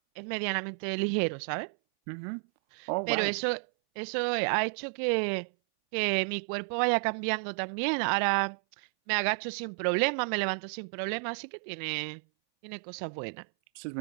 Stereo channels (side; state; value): left; silent; 57 dB below the other